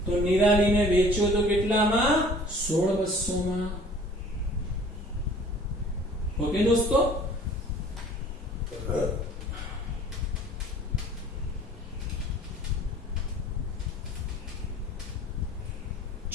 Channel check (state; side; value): normal; both; correlation 0.50